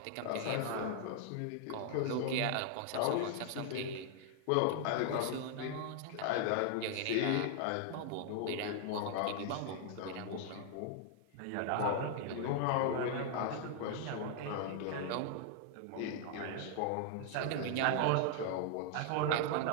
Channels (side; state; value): both; different; correlation 0.00